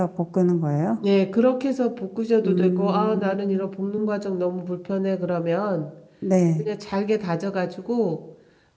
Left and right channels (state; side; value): identical; both; correlation 1.00